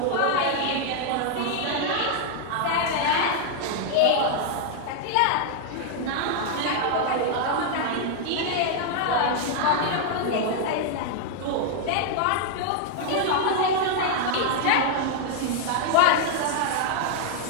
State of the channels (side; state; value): both; different; correlation 0.00